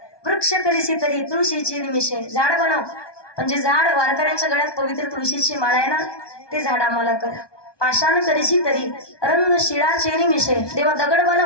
वृक्ष करीसी तरी तुळशीचे निमिषे झाड बनव पण जे झाड वारकऱ्यांच्या गळ्यात पवित्र तुळशीची माळ आहे ना ते झाड आम्हाला कर. पाषाण करीसी तरी रंग शिळाचे निमिषे देवा दगड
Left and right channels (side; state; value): right; late; 1.2 ms